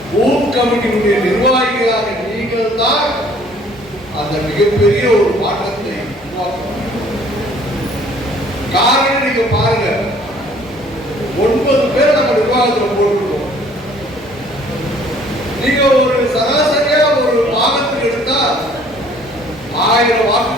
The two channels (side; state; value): both; normal; correlation 0.56